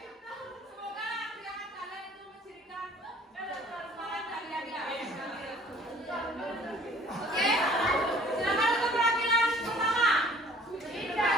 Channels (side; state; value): both; normal; correlation 0.54